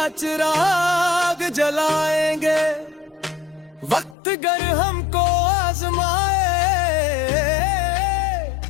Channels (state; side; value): drops out; right; at 4.2 s